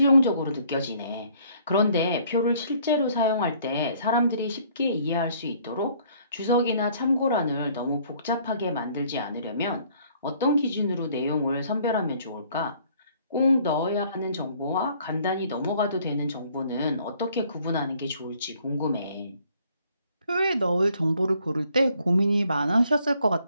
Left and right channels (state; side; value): inverted; both; correlation -0.61